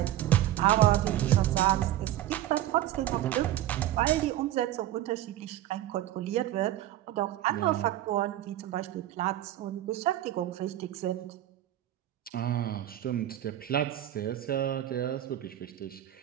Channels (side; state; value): left; quieter; 13.4 dB